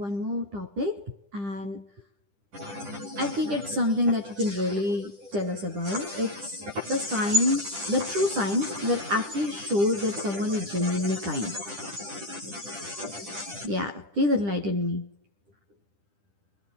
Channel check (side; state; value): left; late; 10 ms